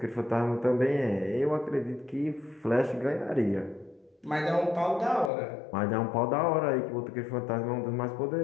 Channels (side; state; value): right; drops out; at 5.3 s